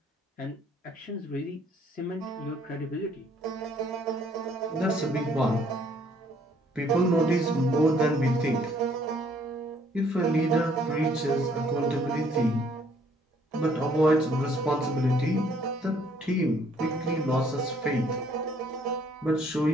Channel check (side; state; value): both; normal; correlation 0.63